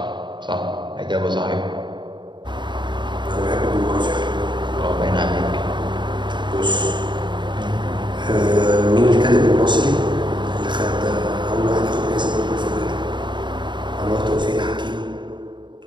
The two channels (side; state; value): left; late; 0.22 ms